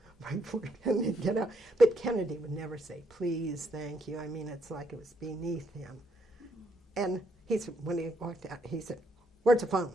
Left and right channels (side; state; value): both; normal; correlation 0.74